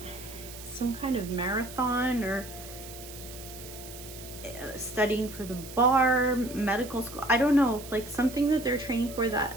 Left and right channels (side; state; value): right; noise; hiss, 14 dB below the sound